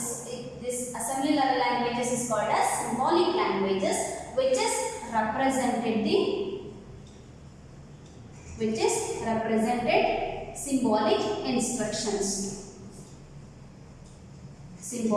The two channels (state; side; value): identical; both; correlation 1.00